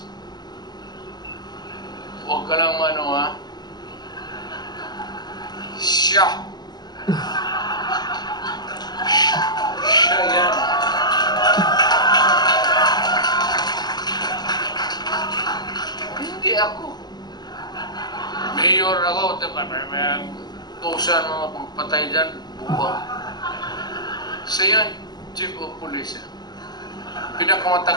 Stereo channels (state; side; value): late; right; 0.20 ms